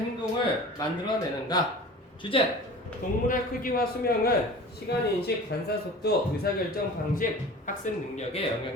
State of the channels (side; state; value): both; normal; correlation 0.40